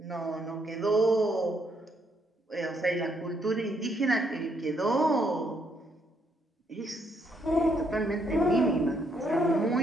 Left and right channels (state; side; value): normal; both; correlation 0.72